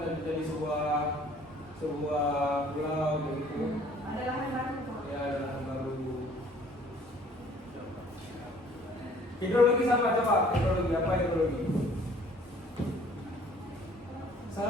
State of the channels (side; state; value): both; normal; correlation 0.55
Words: menjadi sebuah pulau begitu. Ada lahan baru. Ya, ada lahan baru. Hidrologi sama coba. Hidrologi apa hidrologi?